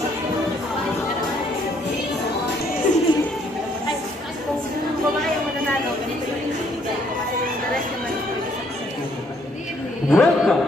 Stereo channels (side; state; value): right; noise; hum, 29 dB below the sound